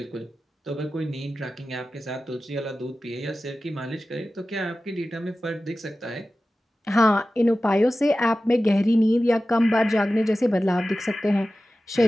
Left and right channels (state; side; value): normal; both; correlation 0.95